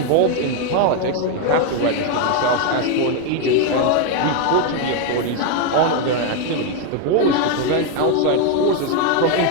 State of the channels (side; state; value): both; different; correlation 0.01